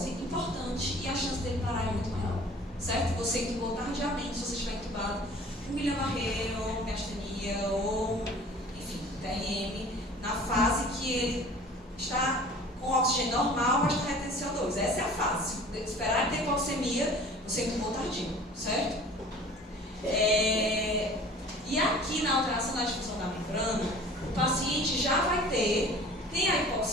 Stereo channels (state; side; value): normal; both; correlation 0.46